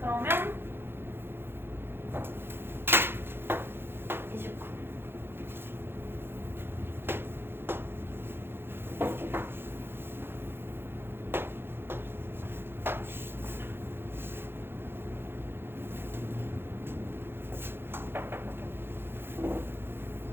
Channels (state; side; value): late; left; 0.11 ms